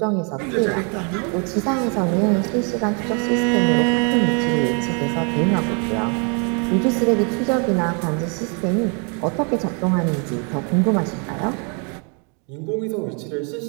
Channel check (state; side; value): quieter; left; 36.5 dB